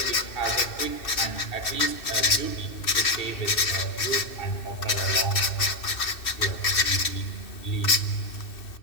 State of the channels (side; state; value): right; late; 2.6 ms